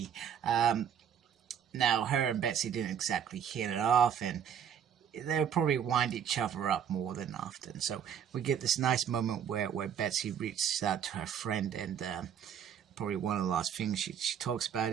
Now her and Betsy didn't exactly hit it off, and they would probably wind each other up more than often. So we get this nice moment where Betsy reaches out to her friend, and probably one of the last things she talks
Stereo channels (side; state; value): left; quieter; 8.6 dB